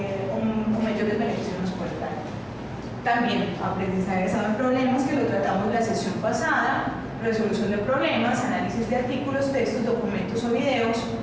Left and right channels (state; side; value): identical; both; correlation 1.00